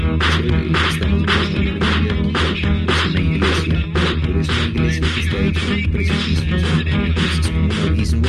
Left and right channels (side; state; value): both; identical; correlation 1.00